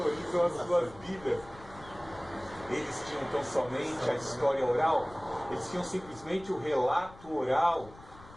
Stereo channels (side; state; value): left; noise; rumble, 20 dB below the sound